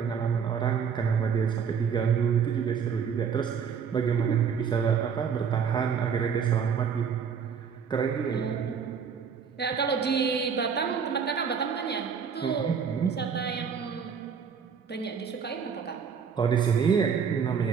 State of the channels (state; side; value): quieter; left; 6.7 dB